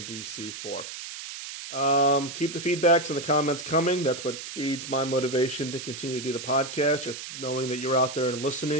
D.C. for. Keep the feedbacks and the comments coming. That's what feeds my motivation to continue to do the podcast, just knowing that you're out there and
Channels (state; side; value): noise; right; hiss, 9 dB below the sound